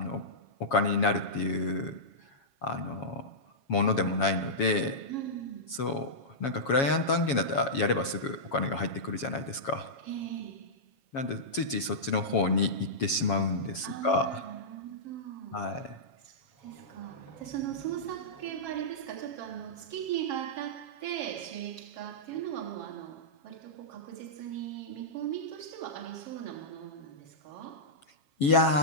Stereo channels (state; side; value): late; right; 7.3 ms